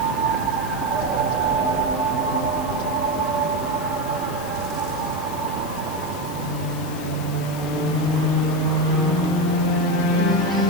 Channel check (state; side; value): noise; left; hiss, 16 dB below the sound